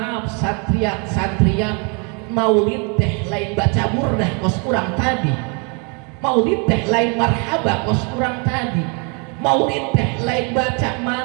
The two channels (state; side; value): quieter; left; 35.1 dB